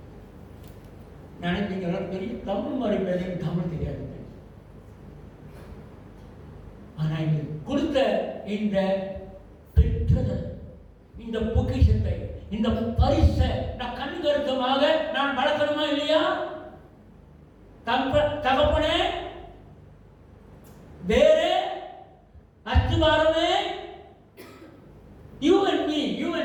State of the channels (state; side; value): identical; both; correlation 1.00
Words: நினைச்சீங்களா? பெரிய தமிழ் மாதிரி பேச தமிழ் தெரியாது. ஆனா இது கொடுத்த இந்த பெற்றதல், இந்த பொக்கிஷத்தை, இந்த பரிசை நான் கண்கருத்தமாக நான் வளர்க்கணுமா இல்லையா? தகப்பனே, வேறு அஸ்திவாரமே, you and me, you